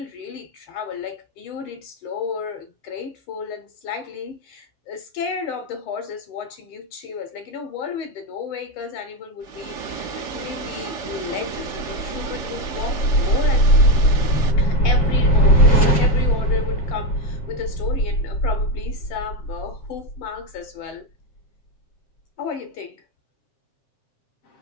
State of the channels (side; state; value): right; late; 6.9 ms